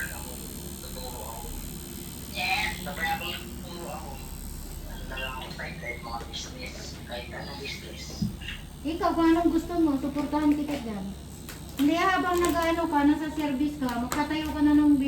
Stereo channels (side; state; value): both; identical; correlation 1.00